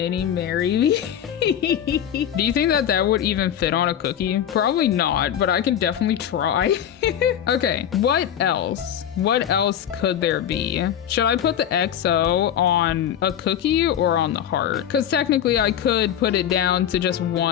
marry me. Do you think that would even fit on a cookie? Probably not, but I can definitely try. Okay, what else? What else could there be? Should I put the XO on a cookie or on the heart? Because technically I could put it down to just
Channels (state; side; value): quieter; right; 9.8 dB